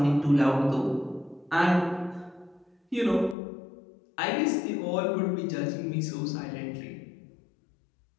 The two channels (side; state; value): right; drops out; at 3.4 s